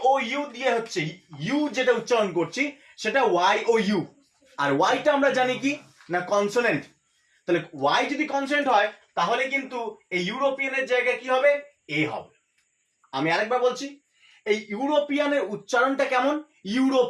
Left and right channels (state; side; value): identical; both; correlation 1.00